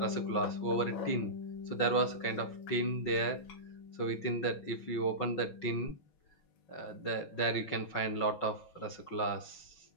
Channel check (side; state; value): right; late; 6.1 ms